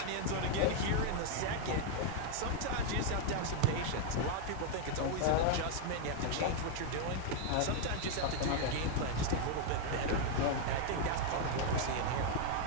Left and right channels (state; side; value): different; both; correlation 0.00